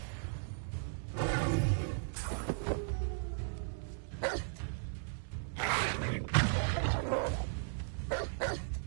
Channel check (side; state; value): left; silent; 53 dB below the other